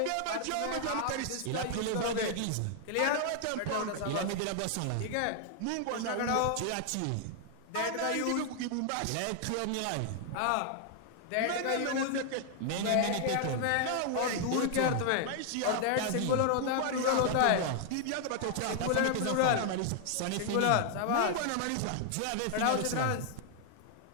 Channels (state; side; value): different; both; correlation 0.00